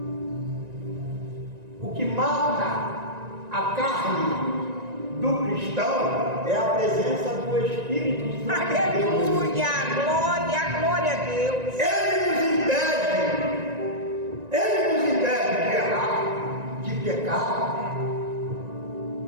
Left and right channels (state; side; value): late; left; 1.9 ms